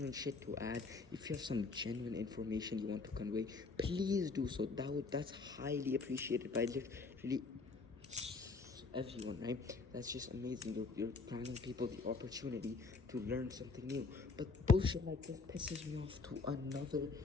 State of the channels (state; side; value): quieter; right; 4.2 dB